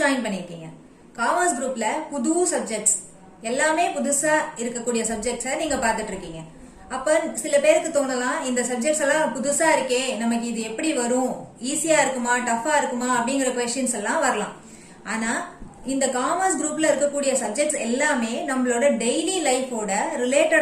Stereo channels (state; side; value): identical; both; correlation 1.00